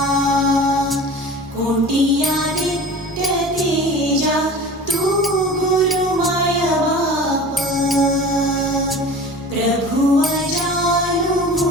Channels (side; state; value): both; normal; correlation 0.38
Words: कोटी आदित्य तेजा तू गुरु माया बाप प्रभु